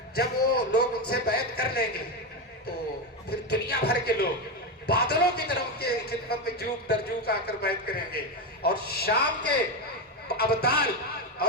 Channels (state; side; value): normal; both; correlation 0.13